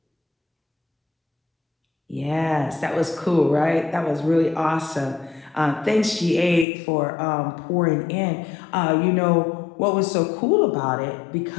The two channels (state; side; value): drops out; right; at 6.7 s